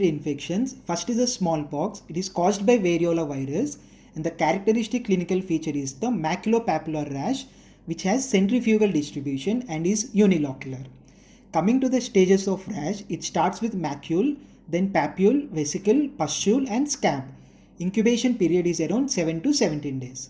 infections, first is the smallpox. It is caused by variola virus and the characteristic clinical feature is the maculopapular rash, which has centrifugal distribution and is unilocular. Coming to the stages of rash, it starts with macule, then papule, vesicle, pustule and scab. Incubation period is around 7 to 17 days.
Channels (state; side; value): identical; both; correlation 1.00